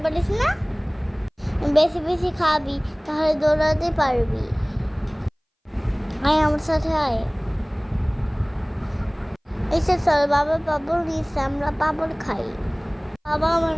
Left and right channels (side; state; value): both; identical; correlation 1.00